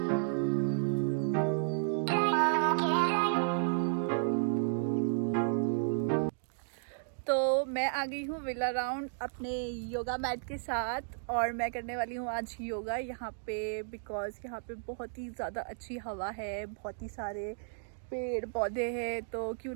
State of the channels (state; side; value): silent; left; digital silence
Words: तो मैं आ गई हूँ विला राउंड अपने योगा मैट के साथ और मैं करने वाली हूँ आज योगा यहाँ पे, बिकॉज़ यहाँ पे बहुत ही ज़्यादा अच्छी हवा है, बहुत ही सारे पेड़ पौधे हैं, तो क्यों